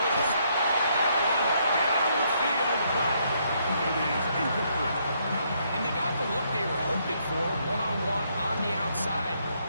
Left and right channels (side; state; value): both; inverted; correlation -0.72